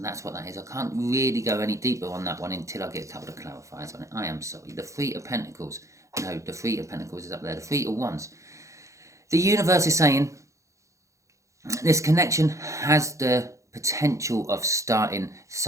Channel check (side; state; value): left; late; 0.15 ms